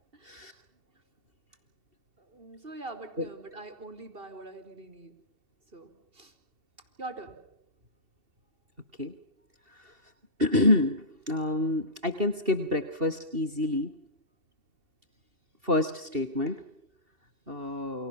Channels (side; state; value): left; late; 2.7 ms